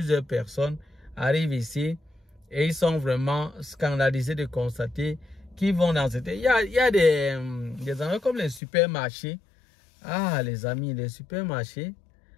personnes arrivent ici et ils sont vraiment scandalisés de constater qu'ils vont dans cette... Il y a des endroits comme les supermarchés. Ah, les amis, les supermarchés.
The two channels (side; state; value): right; drops out; at 8.6 s